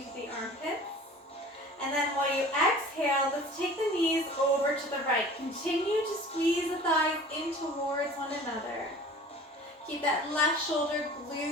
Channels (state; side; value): normal; both; correlation 0.43